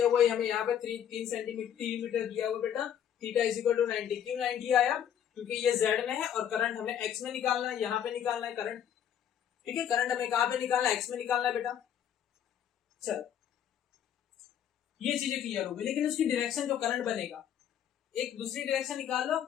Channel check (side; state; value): right; quieter; 9.5 dB